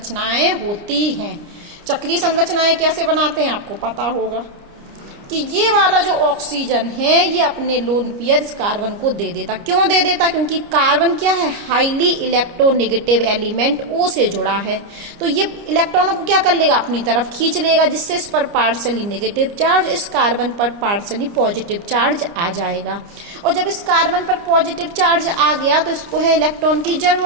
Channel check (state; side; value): late; left; 29 ms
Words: होती हैं। चक्रीय संरचनाएं कैसे बनाते हैं आपको पता होगा कि ये वाला जो ऑक्सीजन है ये अपने लोन पेयर इस कार्बन को दे देता। क्यों दे देता? क्योंकि कार्बन क्या है, हाईली इलेक्ट्रोनेगेटिव एलिमेंट O से जुड़ा है, तो ये इलेक्ट्रॉनों को क्या कर लेगा, अपनी तरफ खींच लेगा, जिससे इस पर पार्शली नेगेटिव चार्ज, इस कार्बन पर पार्शली पॉजिटिव चार्ज आ जाएगा। और जब इस कार्बन पर पॉजिटिव चार्ज आ गया तो इसको है इलेक्ट्रॉन की